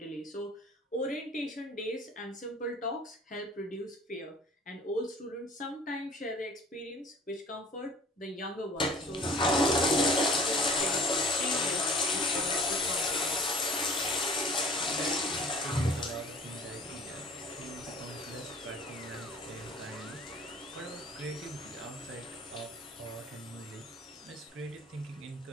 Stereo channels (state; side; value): normal; both; correlation 0.49